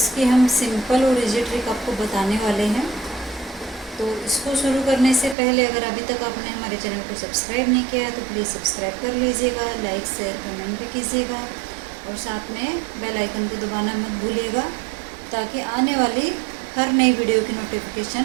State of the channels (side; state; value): left; drops out; at 5.4 s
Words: हम सिंपल और इजी ट्रिक आपको बताने वाले हैं। तो इसको शुरू करने से पहले अगर अभी तक आपने हमारे चैनल को सब्सक्राइब नहीं किया है तो प्लीज़ सब्सक्राइब कर लीजिएगा, लाइक शेयर कमेंट भी कीजिएगा और साथ में बेल आइकन को दबाना मत भूलिएगा ताकि आने वाली हर नई वीडियो की